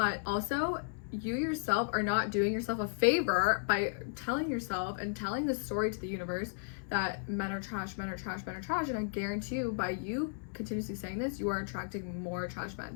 also you yourself are not doing yourself a favor by telling yourself and telling the story to the universe that men are trash, men are trash, men are trash. And I guarantee you, by you continuously saying this, you are attracting more trash men.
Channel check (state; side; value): silent; right; 55 dB below the other